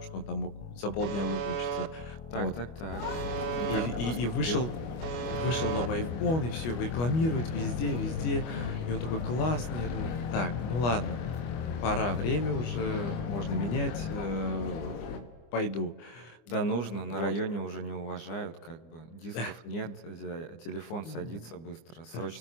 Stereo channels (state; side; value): late; right; 25 ms